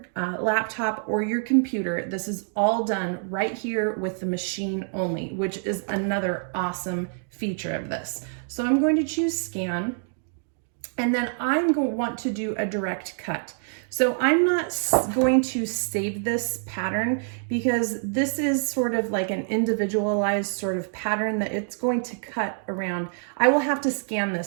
laptop, or your computer. This is all done right here with the machine only, which is another awesome feature of this. So I'm going to choose scan, and then I'm going to want to do a direct cut. So I'm not going to save this pattern because this is sort of like an individualized sort of pattern that it's going to cut around. I will have to scan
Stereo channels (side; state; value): left; silent; 61 dB below the other